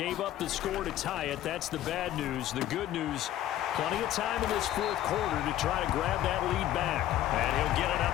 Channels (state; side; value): quieter; right; 13.0 dB